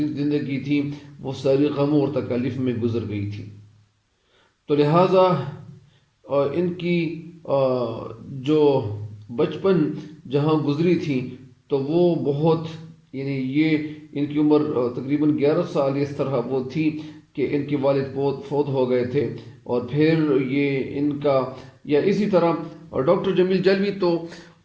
تھی وہ ساری غموں اور تکالیف میں گزر گئی تھی. تو لہٰذا ان کی جو بچپن جہاں گزری تھی تو وہ بہت یعنی یہ ان کی عمر تقریباً 11 سال اس طرح وہ تھی کہ ان کے والد فوت ہو گئے تھے. اور پھر یہ ان کا یا اسی طرح ڈاکٹر جمیل جلوی تو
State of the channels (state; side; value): identical; both; correlation 1.00